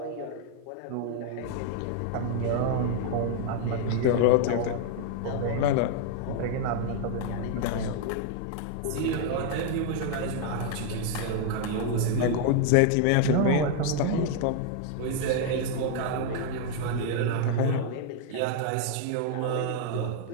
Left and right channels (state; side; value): different; both; correlation 0.00